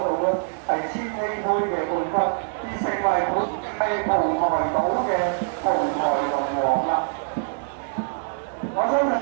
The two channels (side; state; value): left; silent; digital silence